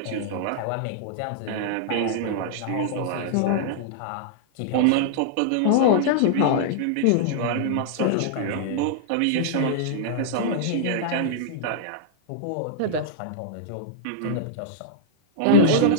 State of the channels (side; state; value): both; different; correlation -0.02